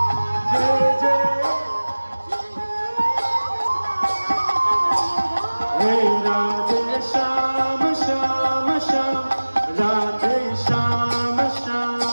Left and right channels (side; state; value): both; inverted; correlation -1.00